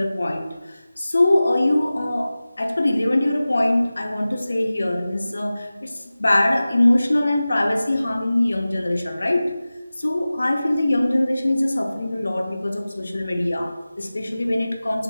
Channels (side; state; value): both; inverted; correlation -0.97